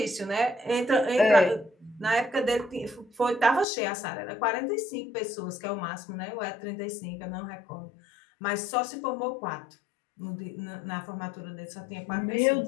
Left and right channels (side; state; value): right; drops out; at 3.7 s